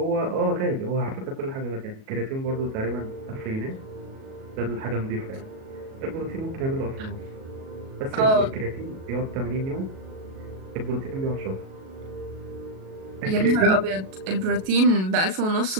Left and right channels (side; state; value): left; late; 37 ms